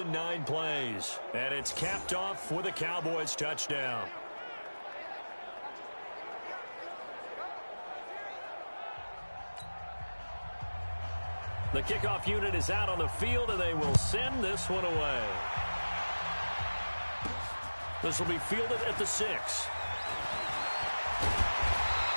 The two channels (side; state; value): both; inverted; correlation -1.00